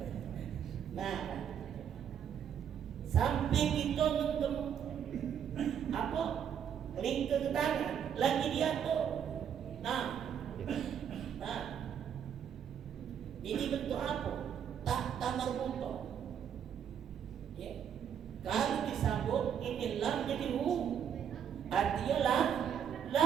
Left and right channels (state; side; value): quieter; left; 8.5 dB